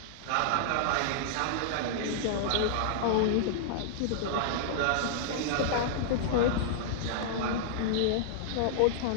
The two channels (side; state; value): both; different; correlation -0.01